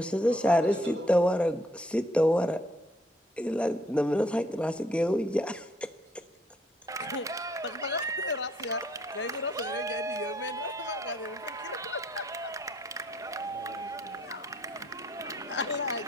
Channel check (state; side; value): normal; both; correlation 0.67